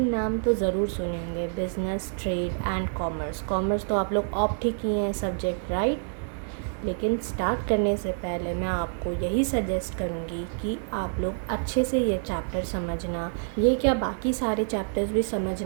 नाम तो ज़रूर सुने होंगे, business, trade and commerce. Commerce तो आप लोग ऑप्ट ही किए हैं सब्जेक्ट, राइट. लेकिन स्टार्ट करने से पहले मैं आपको यही सजेस्ट करूँगी कि आप लोग अच्छे से ये चैप्टर समझना, ये क्या बाकी सारे चैप्टर्स भी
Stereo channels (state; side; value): silent; left; digital silence